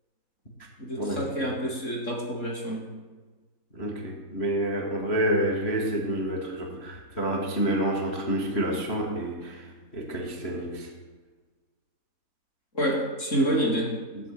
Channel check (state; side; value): late; right; 3.7 ms